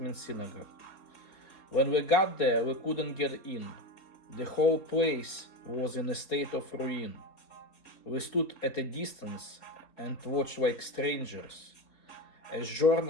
means synagogue. When we got there, we couldn't get in. The whole place was in a state of ruin. We stood at a distance and watched like strangers, as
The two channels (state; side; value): late; right; 4.0 ms